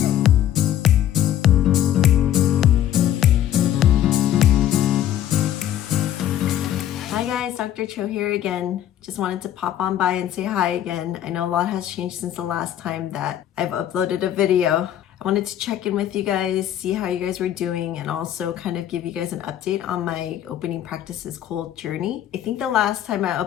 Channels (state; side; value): quieter; right; 11.4 dB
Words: guys, Dr. Cho here again. Just wanted to pop on by and say hi again. I know a lot has changed since the last time that I've uploaded a video. I wanted to check in with you guys, see how you guys were doing, and also kind of give you guys an update on my opening practice's cold journey. I think the last time I